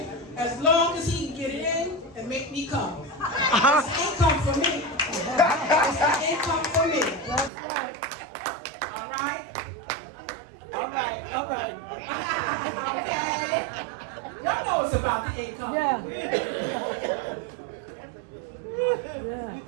As long as he can get it in and make me come. It's income for me. It's an income for me. That's right. All right? All right. All right. Okay? Y'all know it's about the income. Yeah.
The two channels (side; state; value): left; drops out; at 7.5 s